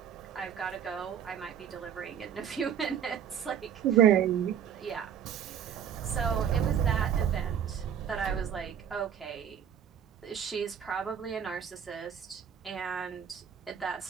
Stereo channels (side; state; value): left; quieter; 8.5 dB